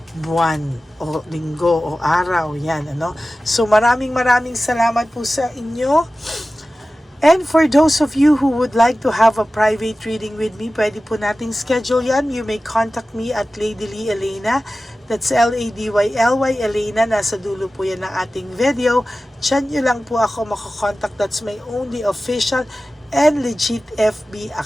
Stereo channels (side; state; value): both; normal; correlation 0.95